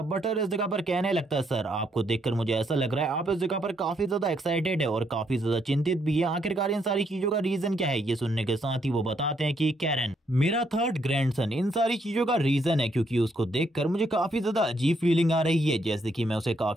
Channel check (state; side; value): normal; both; correlation 0.73